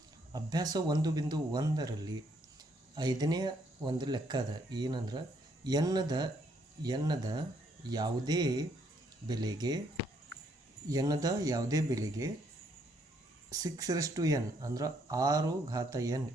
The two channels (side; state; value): left; late; 1.0 ms